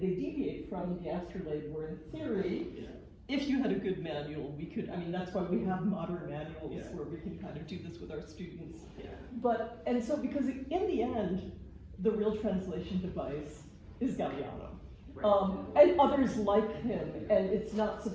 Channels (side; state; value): both; identical; correlation 1.00